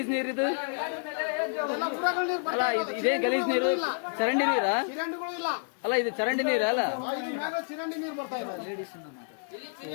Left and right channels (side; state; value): right; silent; digital silence